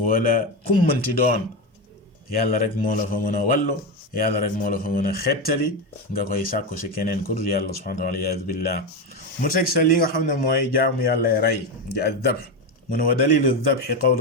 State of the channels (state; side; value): normal; both; correlation 0.14